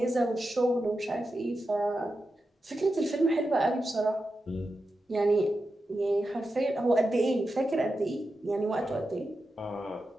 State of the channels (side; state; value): both; normal; correlation 0.90